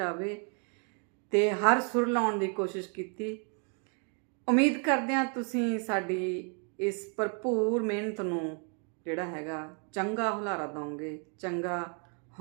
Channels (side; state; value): left; quieter; 39.4 dB